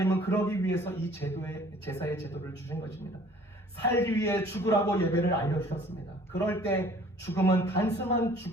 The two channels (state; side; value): normal; both; correlation 0.53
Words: 그러기 위해서 이 제사의 제도를 주신 것입니다. 살기 위해 죽으라고 예배를 알려주셨습니다. 그럴 때 죽음은 단순한